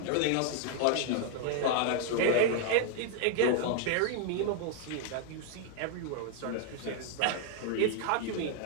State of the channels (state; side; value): different; both; correlation 0.00